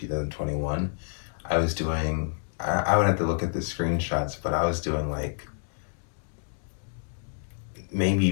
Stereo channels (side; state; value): right; silent; digital silence